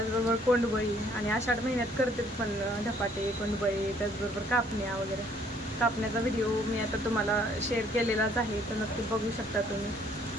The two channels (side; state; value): both; normal; correlation 0.62